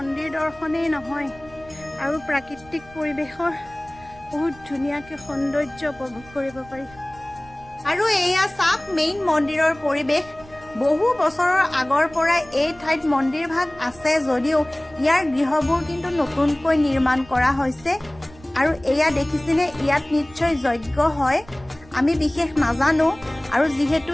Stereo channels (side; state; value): right; noise; rumble, 23 dB below the sound